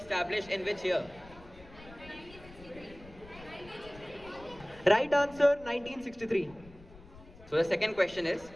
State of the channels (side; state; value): left; noise; rumble, 20 dB below the sound